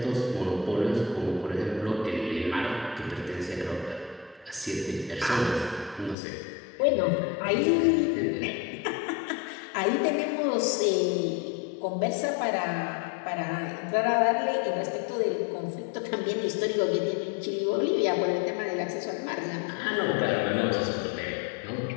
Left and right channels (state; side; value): drops out; right; at 6.2 s